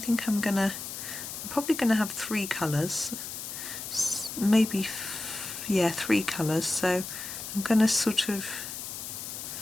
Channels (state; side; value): noise; left; hiss, 8 dB below the sound